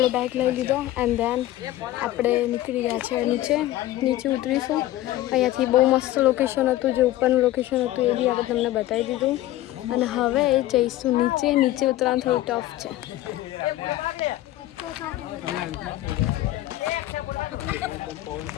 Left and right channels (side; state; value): right; quieter; 15.1 dB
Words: બેગ લઈ લીધો એન્ડ ધેન આપણે નીકળી ગયા છે નીચે ઉતરીશું. અહીંયાથી બહુ મસ્ત લોકેશન હતું, જે ઉપરનું લોકેશન હતું એ બી આપણે તમને બતાવી દીધું. અને હવે જઈશું નીચે ઉતરવાનું થોડું ટફ છે.